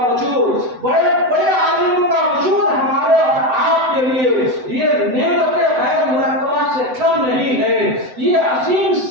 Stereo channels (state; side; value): late; left; 7.9 ms